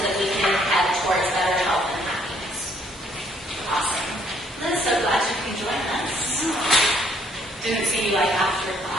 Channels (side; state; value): both; normal; correlation 0.65